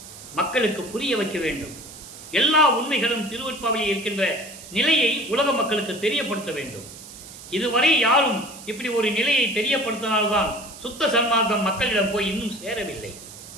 மக்களுக்கு புரிய வைக்க வேண்டும். எல்லா உண்மைகளும் திருவெட்பாவையில் இருக்கின்ற நிலையை உலக மக்களுக்கு தெரியப்படுத்த வேண்டும். இதுவரை யாரும் இப்படி ஒரு நிலையை தெரியப்படுத்தினால்தான் சுத்த சன்மார்க்கம் மக்களிடம் போய் இன்னும் சேரவில்லை.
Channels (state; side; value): noise; right; hiss, 16 dB below the sound